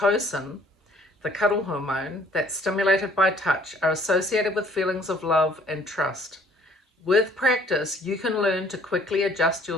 the cuddle hormone that's stimulated by touch, are associated with feelings of love and trust. With practice, you can learn to quickly adjust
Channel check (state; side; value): normal; both; correlation 0.59